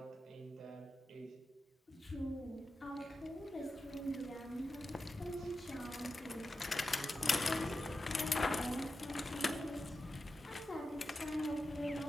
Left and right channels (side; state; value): both; normal; correlation 0.91